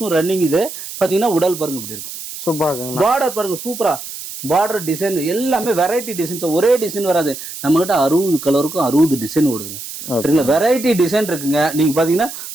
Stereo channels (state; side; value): noise; right; hiss, 10 dB below the sound